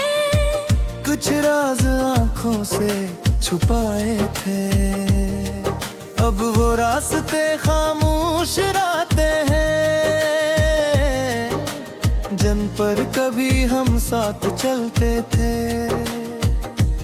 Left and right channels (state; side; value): identical; both; correlation 1.00